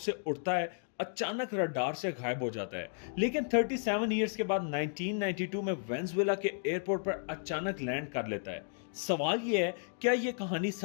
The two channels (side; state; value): right; silent; digital silence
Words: उड़ता है, अचानक रडार से गायब हो जाता है, लेकिन 37 इयर्स के बाद 1992 में वेनेजुएला के एयरपोर्ट पर अचानक लैंड कर लेता है। सवाल यह है, क्या यह कहानी